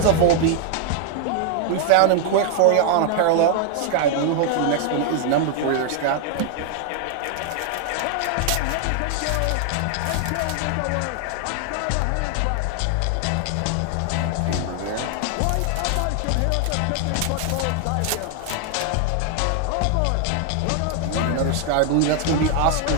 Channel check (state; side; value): different; both; correlation 0.00